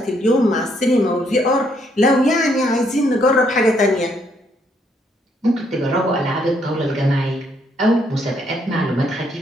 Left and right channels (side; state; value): both; normal; correlation 0.72